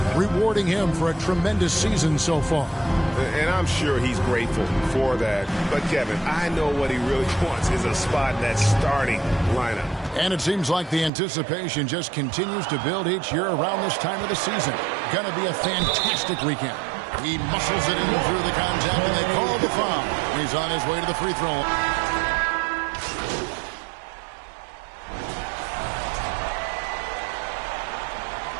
rewarding him for a tremendous season so far. And I'm sure he's grateful for that. But, Kevin, I know what he really wants is a spot in that starting lineup. And it seems like the anticipation just continues to build each year around this time of the season. Going to be a fantastic weekend. He muscles it in through the contact, and they call the foul. He's on his way to the free throw.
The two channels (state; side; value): drops out; left; at 11.1 s